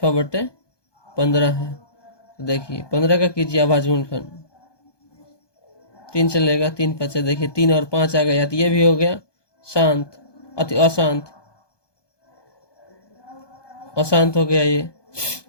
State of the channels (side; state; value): right; late; 1.2 ms